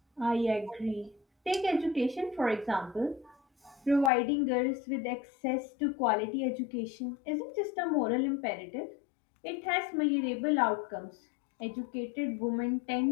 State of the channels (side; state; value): right; drops out; at 4.1 s